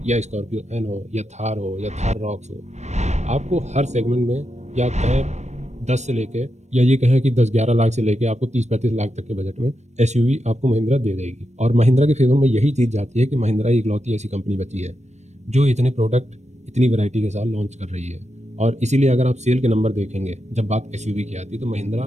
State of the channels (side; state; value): left; late; 0.33 ms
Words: या स्कॉर्पियो एन हो या थार हो या थार रॉक्स हो। आपको हर सेगमेंट में, या कहें 10 से लेके, या ये कहें कि 10-11 लाख से लेके आपको 30-35 लाख तक के बजट में एसयूवी आपको महिंद्रा दे देगी। और महिंद्रा के फेवर में यही चीज़ जाती है कि महिंद्रा ही इकलौती ऐसी कंपनी बची है जो इतने प्रोडक्ट इतनी वैरायटी के साथ लॉन्च कर रही है। और इसीलिए अगर आप सेल के नंबर देखेंगे जब बात एसयूवी की आती है तो महिंद्रा